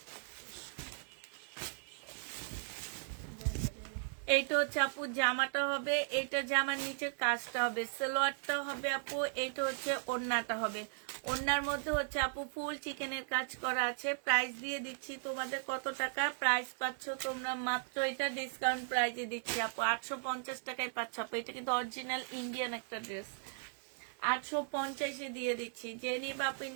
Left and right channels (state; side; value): silent; left; digital silence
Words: এইটা হচ্ছে আপু জামাটা হবে, এটা জামার নিচে কাজটা হবে, সালোয়ারটা হবে আপু, এইটা হচ্ছে ওড়নাটা হবে। ওড়নার মধ্যে হচ্ছে আপু ফুল চিকেনের কাজ করা আছে। প্রাইস দিয়ে দিচ্ছি তোমাদের কত টাকা, প্রাইস পাচ্ছ তোমরা মাত্র, এটা ডিসকাউন্ট প্রাইসে দিচ্ছি আপু 850 টাকায় পাচ্ছ আপু। এটা কিন্তু অরিজিনাল ইন্ডিয়ান একটা ড্রেস। 850 দিয়ে দিচ্ছি। যে নিবা আপু